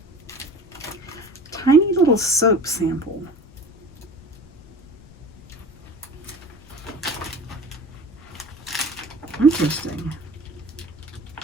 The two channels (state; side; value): noise; left; rumble, 22 dB below the sound